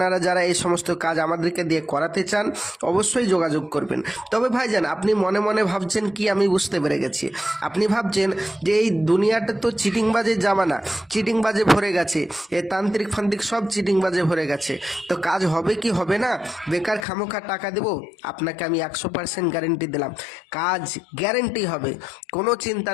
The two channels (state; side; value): drops out; right; at 17.1 s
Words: যারা এই সমস্ত কাজ আমাদেরকে দিয়ে করাতে চান অবশ্যই যোগাযোগ করবেন। তবে ভাইজান, আপনি মনে মনে ভাবছেন কি, আমি বুঝতে পেরে গেছি, আপনি ভাবছেন যে এই দুনিয়াটা তো চিটিংবাজের জামানা, চিটিংবাজে ভরে গেছে, এ তান্ত্রিক ফান্ত্রিক সব চিটিংবাজে ভরে গেছে, তো কাজ হবে কি হবে না, বেকার খামোখা টাকা দেবো? আপনাকে আমি 100% গ্যারেন্টি দিলাম, কাজ গ্যারেন্টি হবে, কোনো চিন্তা